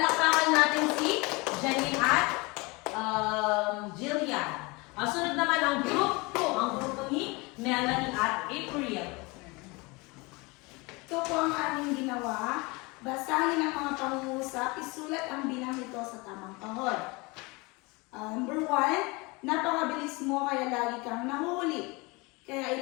natin si Janine at Jillian. Ang sunod naman ang group 2, ang grupo ni Melanie at April. Ito po ang aming ginawa. Basahin ang mga pangungusap, isulat ang bilang nito sa tamang kahon. Number 1, napakabilis mo kaya lagi kang nahuli. Kaya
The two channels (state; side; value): quieter; right; 25.9 dB